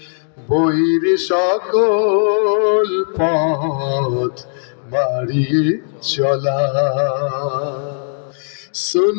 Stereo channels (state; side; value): silent; right; digital silence